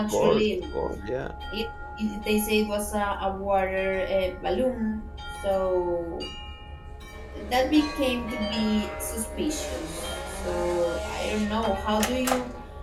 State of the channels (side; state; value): both; identical; correlation 1.00